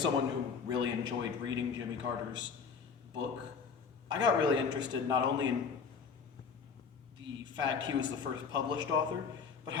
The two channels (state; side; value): quieter; right; 6.0 dB